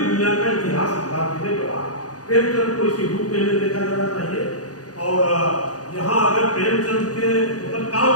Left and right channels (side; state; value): right; late; 0.68 ms